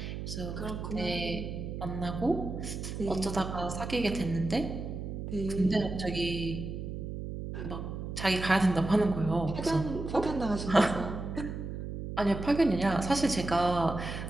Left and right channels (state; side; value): noise; right; hum, 6 dB below the sound